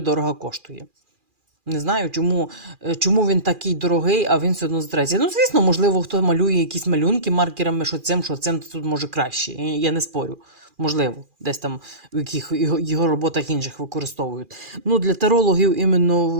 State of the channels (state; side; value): late; left; 2.4 ms